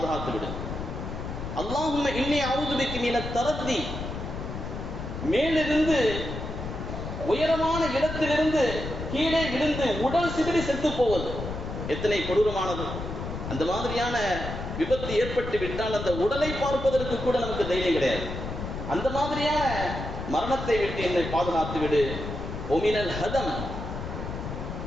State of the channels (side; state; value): left; noise; rumble, 6 dB below the sound